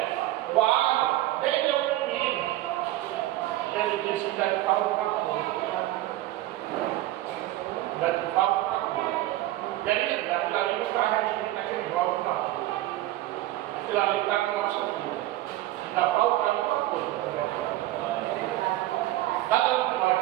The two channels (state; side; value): quieter; left; 15.7 dB